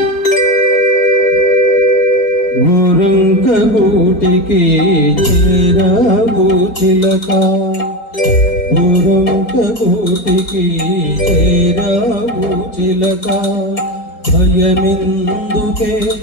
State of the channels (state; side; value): late; right; 4.3 ms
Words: గూటికి చేరావు చిలక గూటికి చేరావు చిలక భయమిందుకే